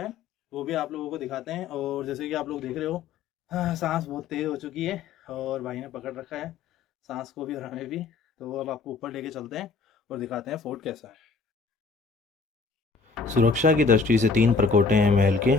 वो भी आप लोगों को दिखाते हैं। और जैसे कि आप लोग देख रहे हो, हाँ, सांस बहुत तेज हो चुकी है और भाई ने पकड़ रखा है सांस को भी और हमें भी। तो अब आपको ऊपर लेके चलते हैं और दिखाते हैं फोर्ट कैसा है। सुरक्षा की दृष्टि से 3 प्रकोटे हैं महल के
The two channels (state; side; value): quieter; right; 4.5 dB